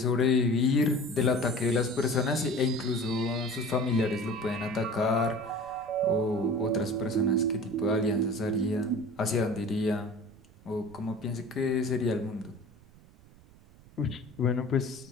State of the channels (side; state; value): right; noise; rumble, 25 dB below the sound